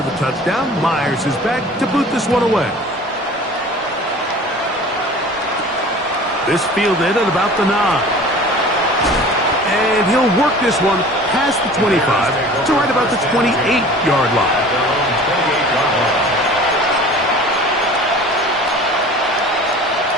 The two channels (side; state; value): both; normal; correlation 0.43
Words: the touchdown, Myers is back to boot this one away. This fielded at about the 9. And he'll work this one past the 25 to right about the 28-yard line.